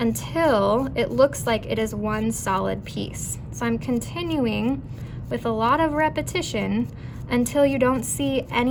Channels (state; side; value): identical; both; correlation 1.00